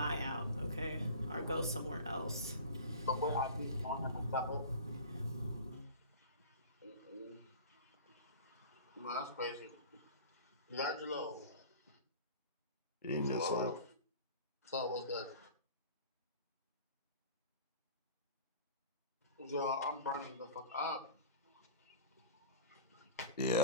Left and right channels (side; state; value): both; inverted; correlation -0.38